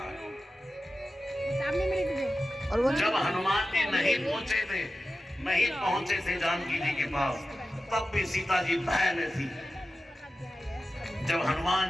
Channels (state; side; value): normal; both; correlation 0.93